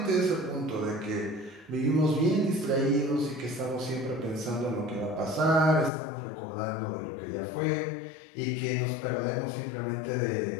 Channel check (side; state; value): right; drops out; at 5.9 s